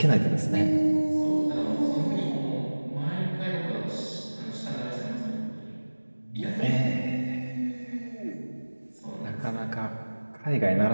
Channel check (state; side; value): inverted; both; correlation -1.00